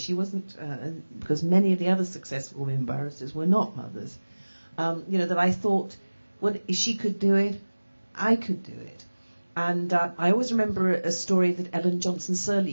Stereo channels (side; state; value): both; inverted; correlation -1.00